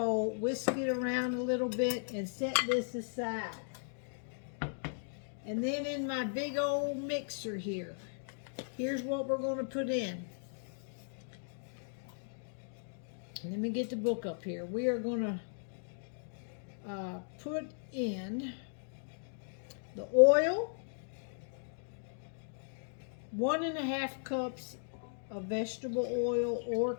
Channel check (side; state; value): right; silent; digital silence